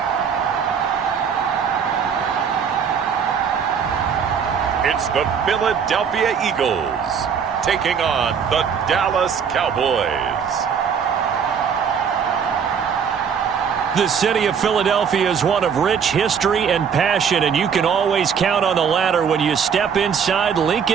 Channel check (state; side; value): quieter; left; 7.0 dB